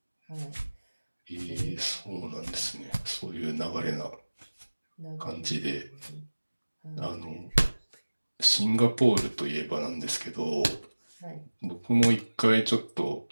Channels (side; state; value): both; inverted; correlation -1.00